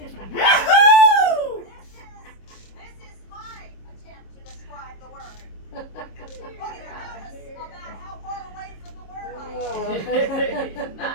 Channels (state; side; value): late; right; 26 ms